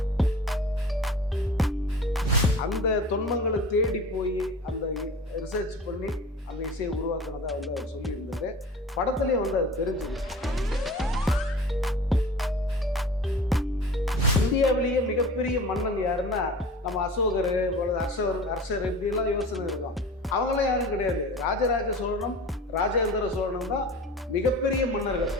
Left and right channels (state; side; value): normal; both; correlation 0.39